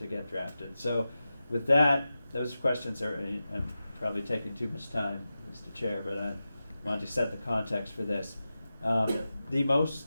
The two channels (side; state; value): both; inverted; correlation -0.93